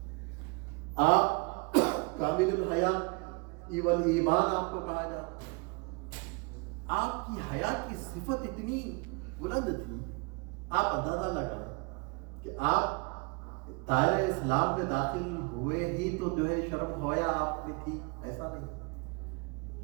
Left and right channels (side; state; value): left; quieter; 30.8 dB